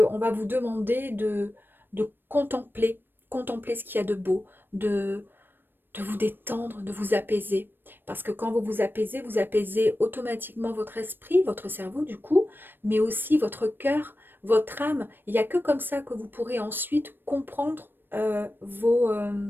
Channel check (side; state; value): left; late; 0.096 ms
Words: on va vous demander de contempler ce qu'il y a de beau, de vous détendre, de vous apaiser. Parce que quand vous apaisez automatiquement votre esprit, votre cerveau du coup, mais aussi votre cœur, votre âme. Il n'y a que comme ça que vous pourrez ensuite comprendre